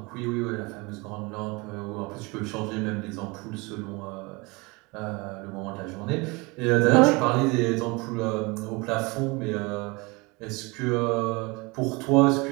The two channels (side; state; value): left; quieter; 26.1 dB